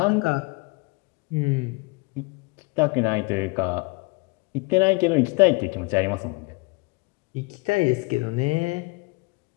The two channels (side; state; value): right; quieter; 28.2 dB